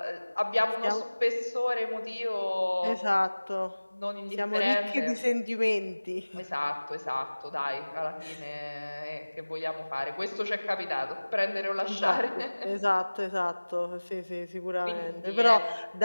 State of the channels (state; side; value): inverted; both; correlation -1.00